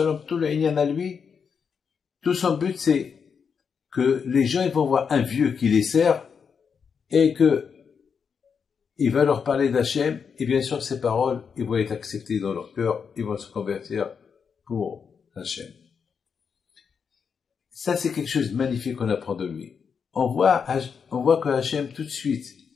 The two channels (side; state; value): right; quieter; 6.4 dB